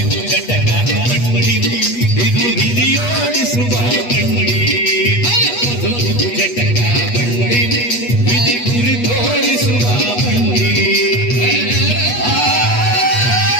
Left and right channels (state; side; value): late; right; 8.3 ms